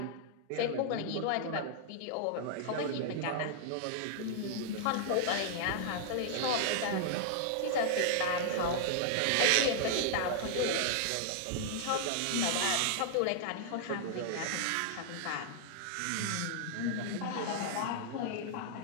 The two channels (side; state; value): both; different; correlation -0.01